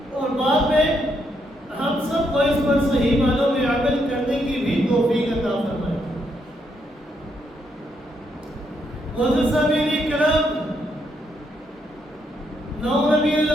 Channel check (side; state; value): both; normal; correlation 0.76